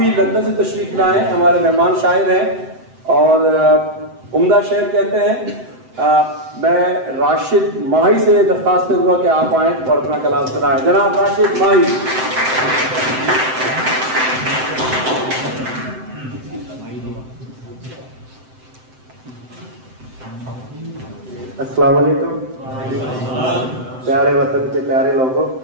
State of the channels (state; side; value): late; left; 7.8 ms